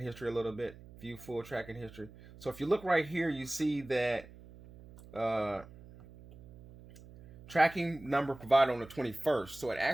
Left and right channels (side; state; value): right; noise; hum, 19 dB below the sound